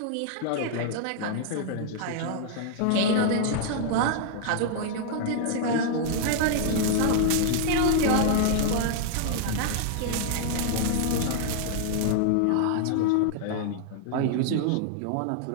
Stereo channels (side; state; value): both; different; correlation -0.01